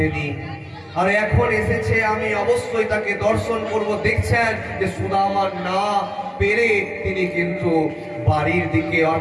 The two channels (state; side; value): identical; both; correlation 1.00